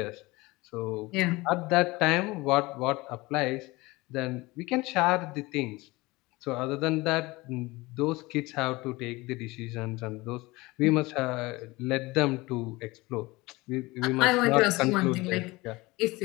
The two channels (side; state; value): right; quieter; 21.9 dB